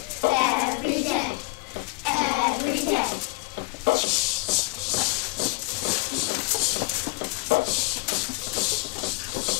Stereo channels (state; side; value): quieter; right; 25.5 dB